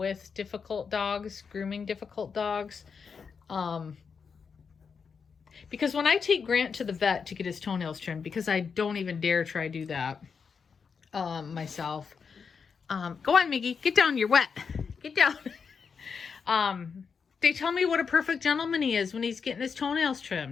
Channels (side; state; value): right; quieter; 5.9 dB